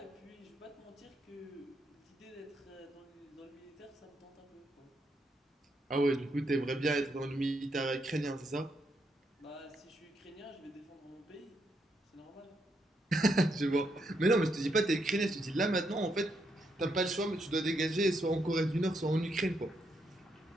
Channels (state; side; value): normal; both; correlation 0.78